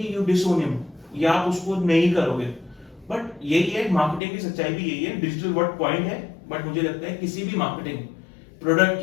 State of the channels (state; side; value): drops out; right; at 4.2 s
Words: यू डिसोन हिम। या आप उसको नहीं करोगे। बट यही है, मार्केटिंग की सच्चाई भी यही है, डिजिटल वर्ड पॉइंट है, बट मुझे लगता है किसी भी मार्केटिंग प्रोडक्ट